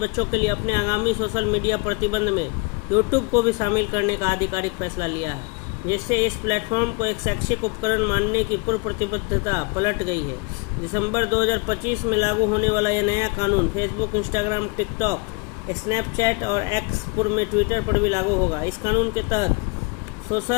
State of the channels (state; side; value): quieter; right; 30.2 dB